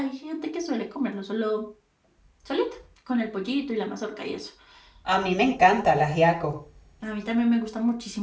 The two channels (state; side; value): identical; both; correlation 1.00